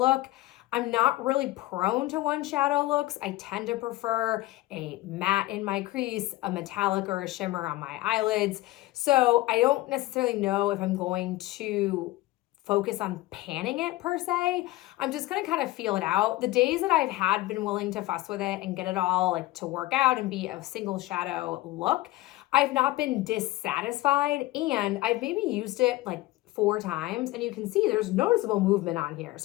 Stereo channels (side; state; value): right; quieter; 18.1 dB